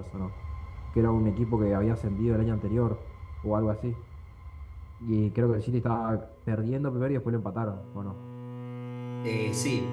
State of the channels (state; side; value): identical; both; correlation 1.00